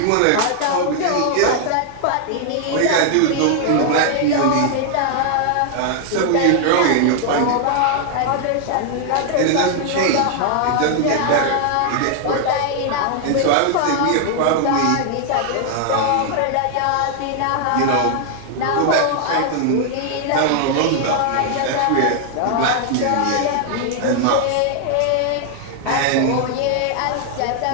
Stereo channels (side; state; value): both; different; correlation 0.00